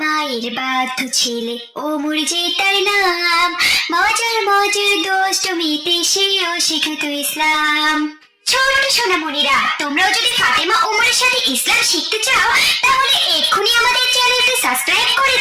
মায়ের বাধ্য ছেলে ওমর যে তার নাম, মজার মজার দুষ্টুমিতে সেও শিখাতো ইসলাম। ছোট সোনামণিরা, তোমরাও যদি ফাতেমা ওমরের সাথে ইসলাম শিখতে চাও তাহলে এক্ষুনি আমাদের চ্যানেলটি সাবস্ক্রাইব করে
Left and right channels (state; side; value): identical; both; correlation 1.00